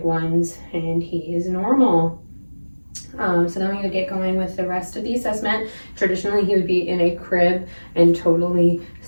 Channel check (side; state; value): both; inverted; correlation -1.00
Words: ones, and he is normal. So then we're going to get going with the rest of the assessment. Traditionally, he would be in a crib and totally